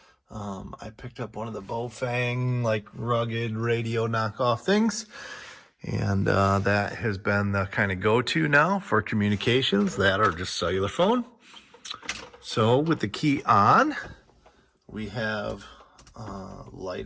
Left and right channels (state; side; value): identical; both; correlation 1.00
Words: I picked up one of the Bofang like rugged radio knockoff things, and that has been the kind of go-to now for communications, that or just cellular phone. So with the key on, we have